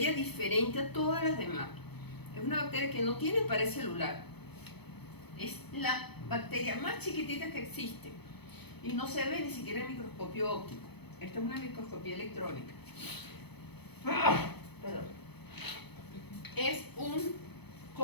diferente a todas las demás. Es una bacteria que no tiene pared celular. Es la bacteria más chiquitita que existe y no se ve ni siquiera en microscopio óptico. Esta es una microscopía electrónica. Perdón.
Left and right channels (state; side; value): late; right; 0.98 ms